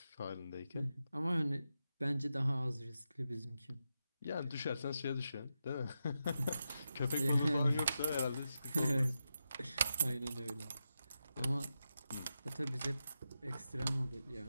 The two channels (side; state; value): both; inverted; correlation -0.87